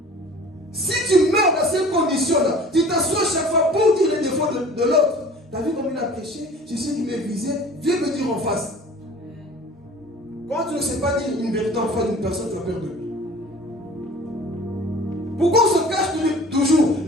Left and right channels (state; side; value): normal; both; correlation 0.45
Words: Si tu meurs dans ces conditions-là, tu t'assois chaque fois pour dire les défauts de l'autre. Tu as vu comme il a prêché? Je sais qu'il m'est visé, viens me dire en face. Quand tu ne sais pas dire une vérité en face d'une personne, tu as peur de lui. Pourquoi on se cache toujours